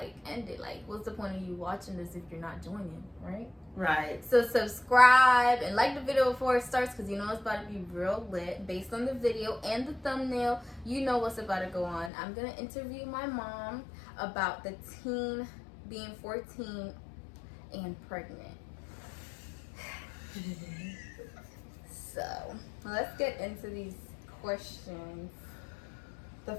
end it. Like, what's the point of you watching this if you're not joining, right? Right. So subscribe and like the video before it starts, because you know it's about to be real lit. Based on the video and the thumbnail, you know what's about to go on. I'm gonna interview my mom about the teen being 14 and pregnant. So let's get into these questions. The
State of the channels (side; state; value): right; drops out; at 12.1 s